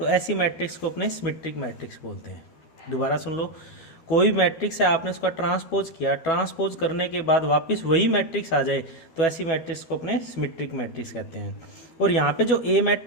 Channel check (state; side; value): late; right; 13 ms